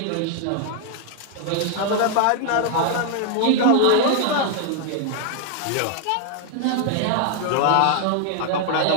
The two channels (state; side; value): different; both; correlation 0.00